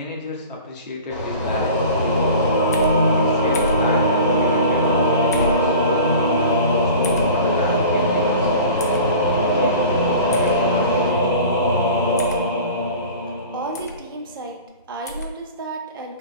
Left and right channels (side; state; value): both; inverted; correlation -0.40